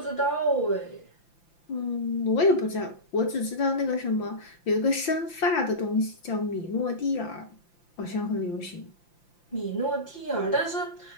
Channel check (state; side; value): late; right; 5.8 ms